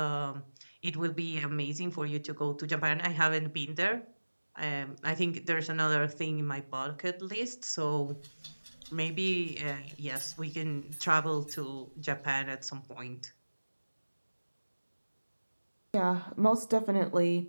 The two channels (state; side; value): inverted; both; correlation -1.00